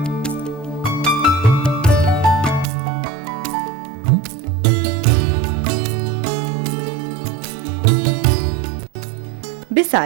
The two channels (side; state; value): left; drops out; at 2.7 s